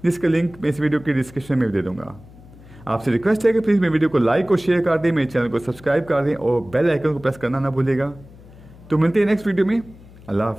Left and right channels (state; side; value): noise; left; hum, 21 dB below the sound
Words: जिसका लिंक मैं इस वीडियो की डिस्क्रिप्शन में दे दूँगा। आपसे रिक्वेस्ट है कि प्लीज़ मेरे वीडियो को लाइक और शेयर कर दें, मेरे चैनल को सब्सक्राइब कर दें और बेल आइकन को प्रेस करना ना भूलिएगा। तो मिलते हैं नेक्स्ट वीडियो में। अल्लाह